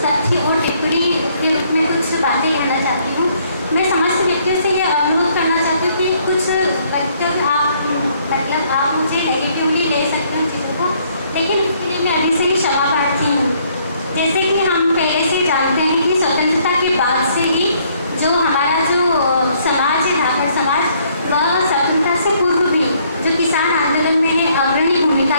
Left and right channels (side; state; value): both; inverted; correlation -0.66